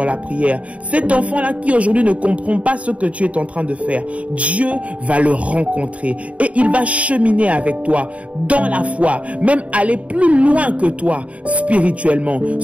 la prière, cet enfant-là qui aujourd'hui ne comprend pas ce que tu es en train de faire, Dieu va le rencontrer et il va cheminer avec toi dans la foi, même aller plus loin que toi spirituellement.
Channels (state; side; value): late; left; 0.066 ms